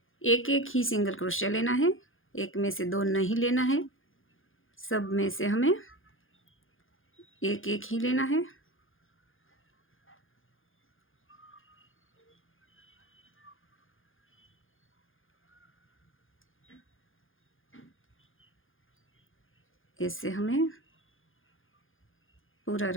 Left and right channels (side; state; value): right; late; 0.59 ms